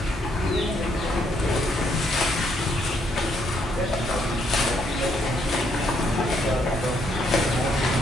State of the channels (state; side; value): normal; both; correlation 0.72